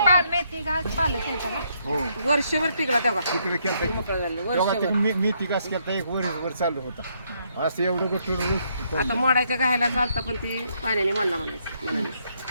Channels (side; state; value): both; inverted; correlation -0.73